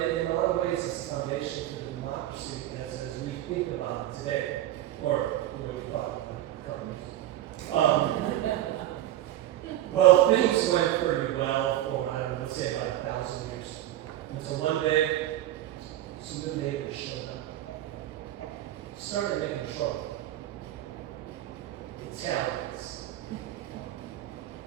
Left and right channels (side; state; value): left; quieter; 13.6 dB